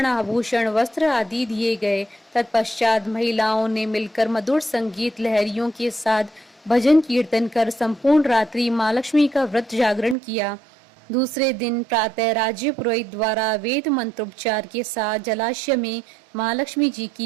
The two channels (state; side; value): drops out; left; at 10.2 s